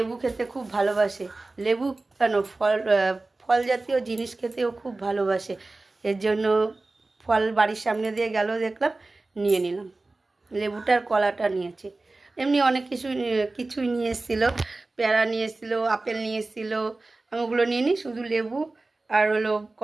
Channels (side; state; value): left; quieter; 3.2 dB